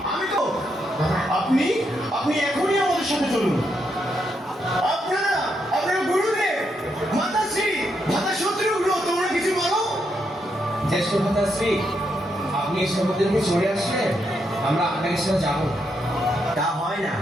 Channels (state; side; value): normal; both; correlation 0.80